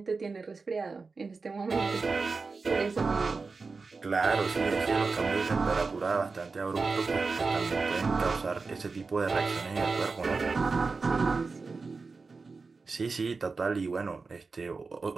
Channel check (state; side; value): quieter; left; 4.3 dB